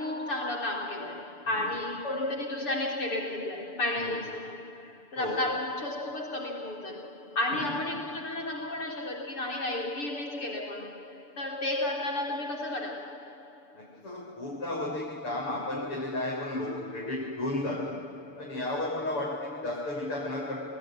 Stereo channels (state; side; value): late; right; 6.9 ms